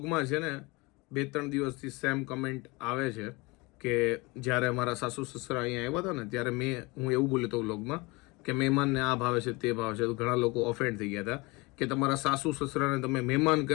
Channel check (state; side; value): quieter; right; 25.0 dB